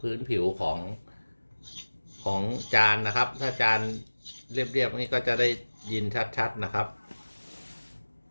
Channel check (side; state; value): both; inverted; correlation -1.00